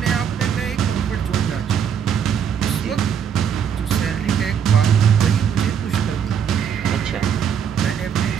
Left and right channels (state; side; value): quieter; left; 7.9 dB